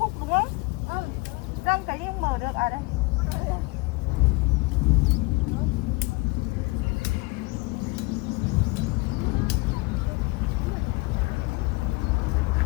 đúng không? Răng cái không mở được à đây.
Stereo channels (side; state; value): right; quieter; 24.3 dB